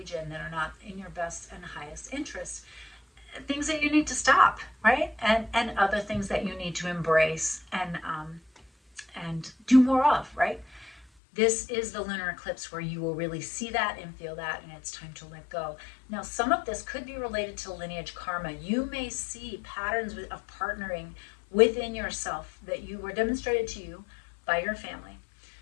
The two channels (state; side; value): drops out; right; at 11.1 s